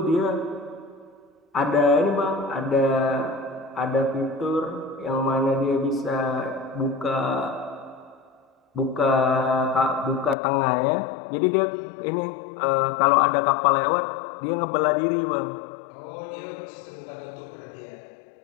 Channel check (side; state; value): right; drops out; at 10.4 s